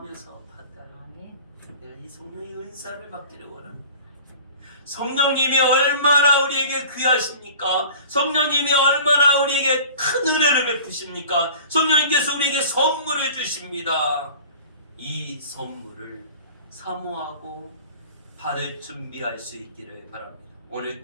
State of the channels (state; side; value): inverted; both; correlation -0.42